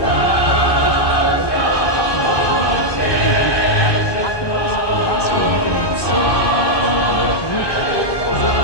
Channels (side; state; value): right; late; 1.2 ms